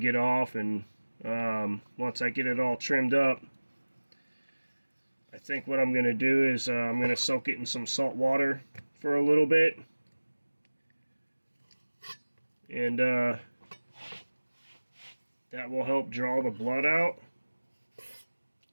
off, and once I get it all trimmed up, I think what I'm going to do is I'm going to soak it in some salt water for a little bit. And that will help draw the blood out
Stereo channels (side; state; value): both; inverted; correlation -1.00